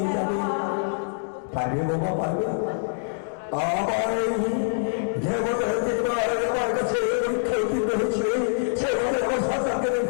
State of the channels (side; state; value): right; silent; digital silence